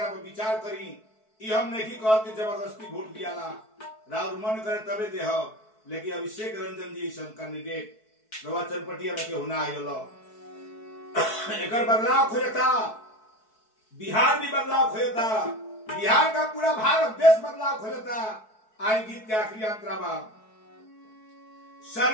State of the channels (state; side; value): late; right; 4.6 ms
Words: विचार करी ये हम नहीं कहते जबरदस्ती वोट दिया राहुल मन करे तबे दे लेकिन अभिषेक रंजन जी कैंडिडेट रवा चनपटिया में के होना आयल एक बदलाव खोजता बिहार भी बदलाव खोजता बिहार का पूरा भारत देश बदलाव खोजता आई गीत के आखिरी अंतरा बा